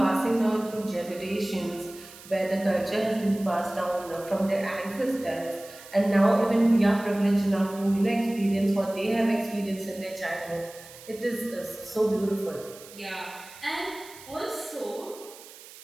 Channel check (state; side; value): noise; right; hiss, 18 dB below the sound